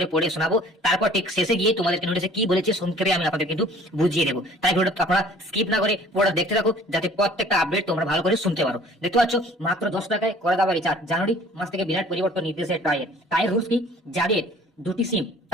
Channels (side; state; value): both; normal; correlation 0.51